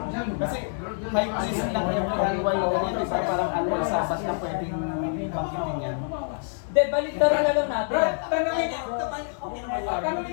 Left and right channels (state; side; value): silent; right; digital silence